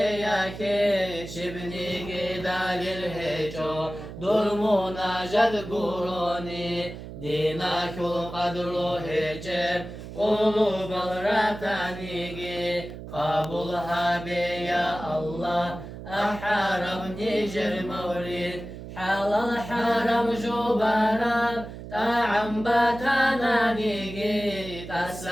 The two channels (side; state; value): right; noise; hum, 11 dB below the sound